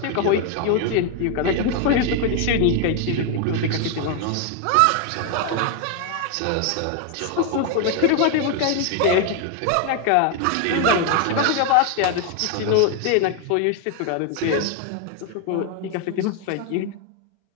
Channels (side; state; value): both; different; correlation 0.01